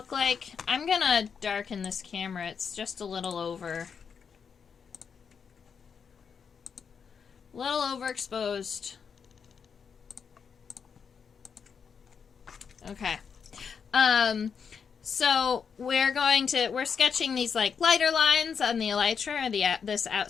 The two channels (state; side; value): quieter; right; 6.5 dB